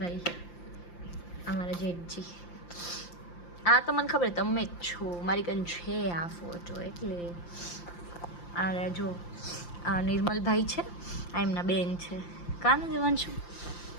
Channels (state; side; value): late; right; 5.8 ms